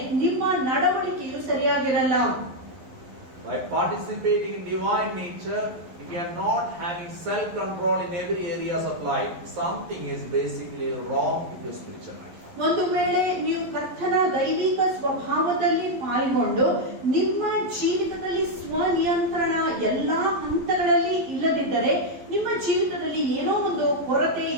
ನಿಮ್ಮ ನಡವಳಿಕೆಯು ಸರಿಯಾಗಿರಲ್ಲ. By participating in divine nature, if you are not having self-control in every areas of life, something is basically wrong with your spiritual life. ಒಂದು ವೇಳೆ ನೀವು ಕರ್ತನ ದೈವಿಕ ಸ್ವಭಾವದಲ್ಲಿ ಪಾಲ್ಗೊಂಡು ನಿಮ್ಮ ಜೀವಿತದಲ್ಲಿ ಸ್ವನಿಯಂತ್ರಣ ಎಲ್ಲಾ ಹಂತಗಳಲ್ಲಿ ಇಲ್ಲದಿದ್ದರೆ ನಿಮ್ಮ ಜೀವಿತದಲ್ಲಿ ಏನೋ ಒಂದು ಕೊರತೆ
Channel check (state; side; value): late; left; 11 ms